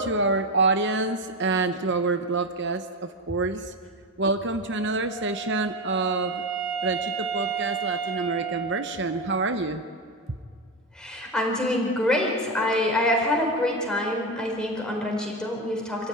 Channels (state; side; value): normal; both; correlation 0.16